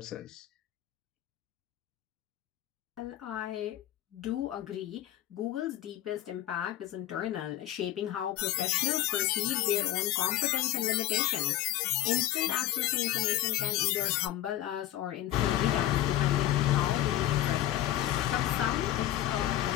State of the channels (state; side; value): quieter; right; 13.6 dB